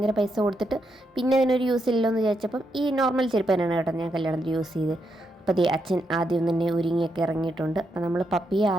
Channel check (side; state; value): both; normal; correlation 0.81